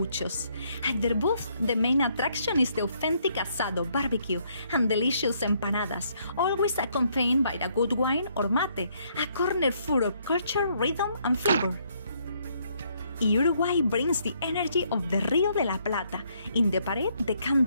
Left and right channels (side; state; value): both; inverted; correlation -0.70